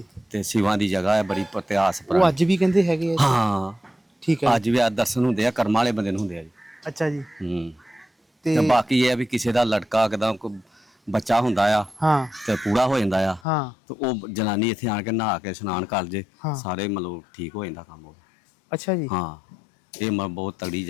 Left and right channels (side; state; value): right; drops out; at 13.4 s